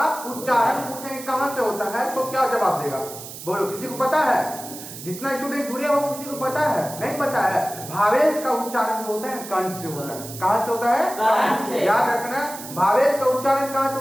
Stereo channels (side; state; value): right; noise; hiss, 12 dB below the sound